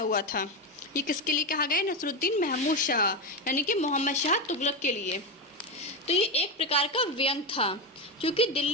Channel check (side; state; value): both; normal; correlation 0.13